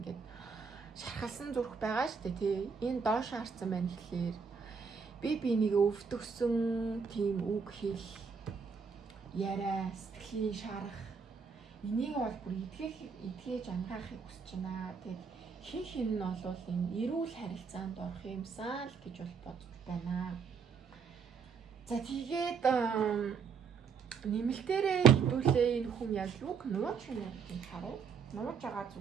шархалсан зүрх байгаа шүү дээ тий. Энэ доош харсан байна гэхлээр би бинийг өвдөгсөн тийм үг хэл яриа сэтгэлийн шарах энийг бол бүр эдгээж ангаахыг хүсэж байна. Тэгээд хин нь бол энэ эрүүл харилцаанд орох юмсан л гэж бол бодож байна. За тэгээд нэмэлтээрээ хэдүүлээ энэ хүн яг юг нууж байна гэдгийг харъя. Нууж байгаа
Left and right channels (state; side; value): quieter; left; 5.9 dB